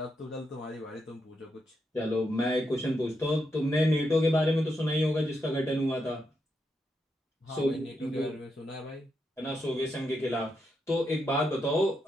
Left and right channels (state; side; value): normal; both; correlation 0.83